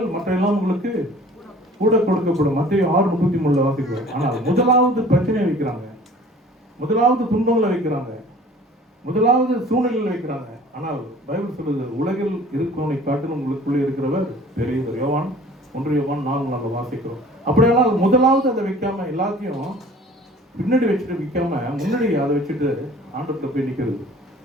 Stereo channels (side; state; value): both; normal; correlation 0.49